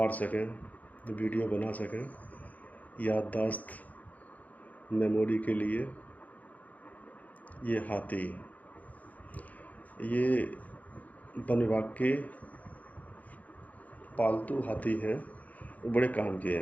सकें, वीडियो बना सकें, याददाश्त मेमोरी के लिए। ये हाथी, ये वन विभाग के पालतू हाथी हैं, वो बड़े काम के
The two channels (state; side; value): late; right; 0.076 ms